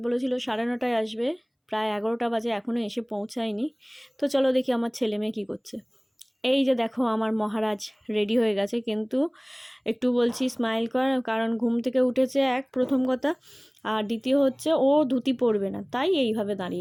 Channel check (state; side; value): identical; both; correlation 1.00